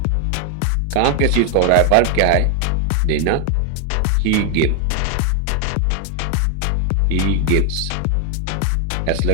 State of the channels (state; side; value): different; both; correlation 0.00